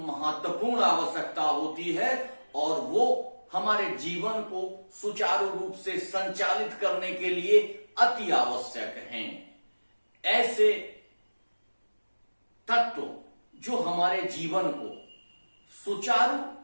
आवश्यकता होती है और वो हमारे जीवन को सुचारू रूप से संचालित करने के लिए अति आवश्यक हैं। ऐसे तत्व जो हमारे जीवन को सुचारू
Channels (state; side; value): inverted; both; correlation -1.00